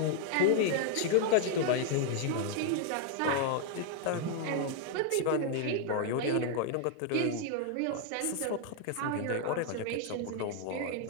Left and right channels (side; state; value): both; different; correlation 0.00